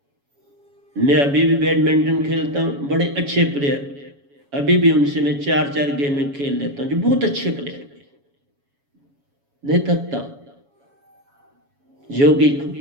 मैं अभी भी बैडमिंटन खेलता हूं, बड़े अच्छे प्लेयर अभी भी उनसे मैं 4-4 गेम में खेल लेता हूं, जो बहुत अच्छे प्लेयर, नहीं थकता, योगी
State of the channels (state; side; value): late; left; 7.2 ms